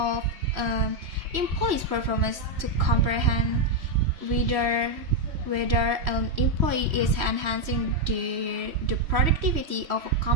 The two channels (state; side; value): late; left; 3.1 ms